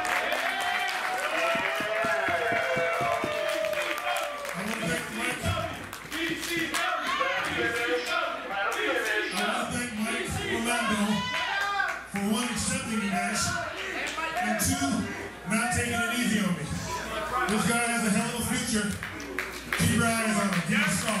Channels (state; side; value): identical; both; correlation 1.00